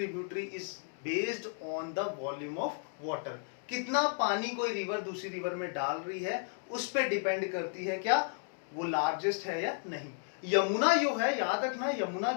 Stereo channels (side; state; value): right; silent; 55 dB below the other